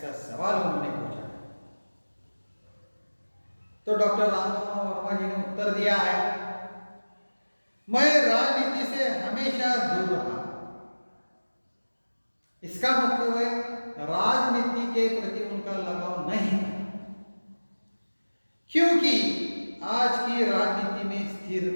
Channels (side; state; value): both; inverted; correlation -1.00